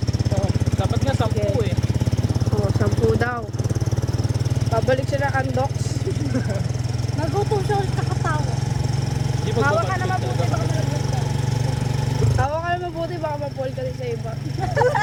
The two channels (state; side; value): identical; both; correlation 1.00